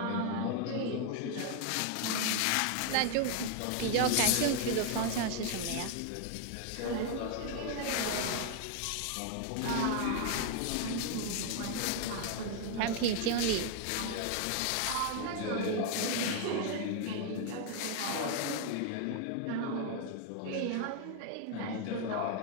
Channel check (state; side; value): different; both; correlation 0.00